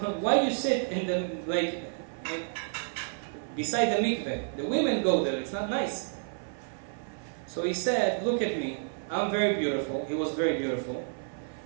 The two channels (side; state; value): left; silent; 58 dB below the other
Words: why you sit in the, beside the mikveh? The women go there, it's not nice. So he said, look at me, I'm very beautiful. He was very beautiful.